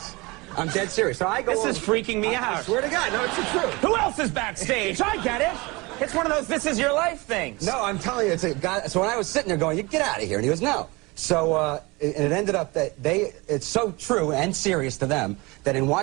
I'm dead serious. So I go. This is freaking me out. I swear to God, no, it's the truth. Who else is backstage? I get it. It's one of those "this is your life" things. No, I'm telling you, it's a guy. So when I was sitting there going, "You get out of here," and he goes, "No." So and it ended up that it's so true and serious to them that in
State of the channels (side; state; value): left; quieter; 24.6 dB